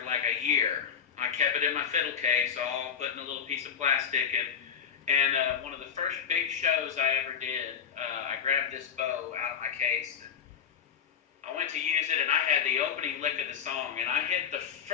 like a year. I kept it in my fiddle case, all put in a little piece of plastic, and one of the first big shows I ever did, I grabbed this bow out of my case, and I went to use it, and I had the opening lick of the song, and I hit the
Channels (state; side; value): quieter; right; 7.5 dB